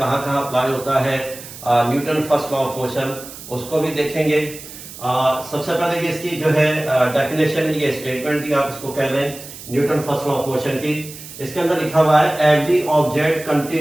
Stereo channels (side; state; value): right; noise; hiss, 14 dB below the sound